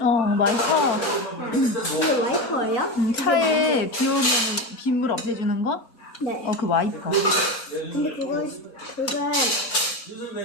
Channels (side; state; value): both; normal; correlation 0.20